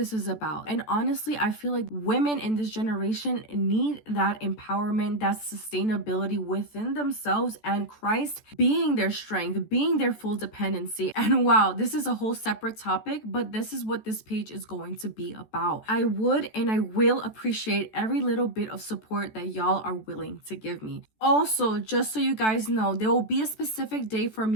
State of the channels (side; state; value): right; late; 14 ms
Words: is about. And honestly, I feel like women in this generation need that empowerment, that sustainability within themselves, and Christ being their strength, being their full dependency. And wow, this is a whole separate topic, but this is what this page is going to be about. I would and I will appreciate every little bit of support that y'all are willing to give me. Also, just so you guys know, there will be a specific day for